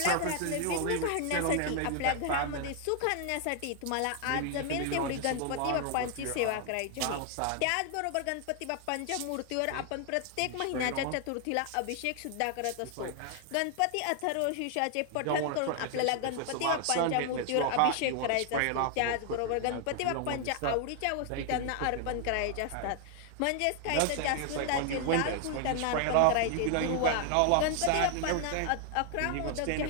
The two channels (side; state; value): both; different; correlation 0.00